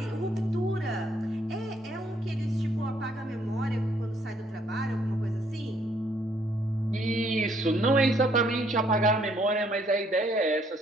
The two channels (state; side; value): normal; both; correlation 0.67